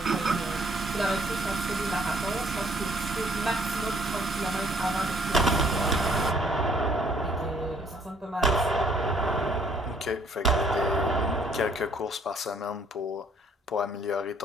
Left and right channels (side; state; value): both; normal; correlation 0.63